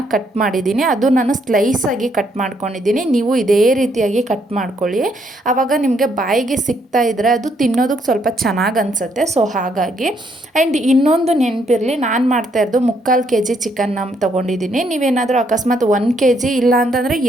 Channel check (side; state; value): both; normal; correlation 0.72